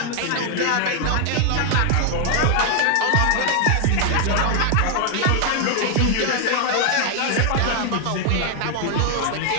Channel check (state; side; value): different; both; correlation 0.00